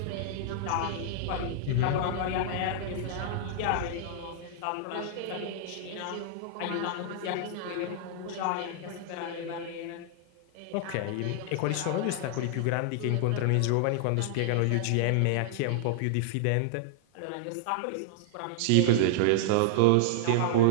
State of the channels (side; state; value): both; different; correlation -0.01